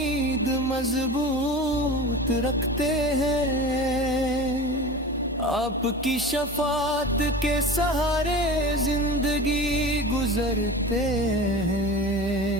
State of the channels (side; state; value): both; normal; correlation 0.33